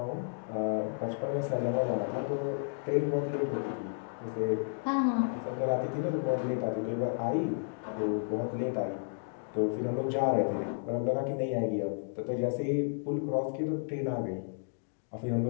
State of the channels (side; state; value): right; silent; digital silence